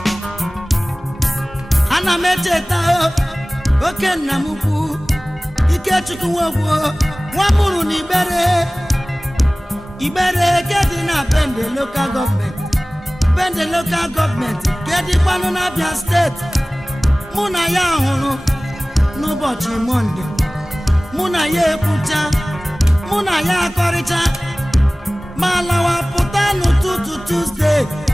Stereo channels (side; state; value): both; normal; correlation 0.98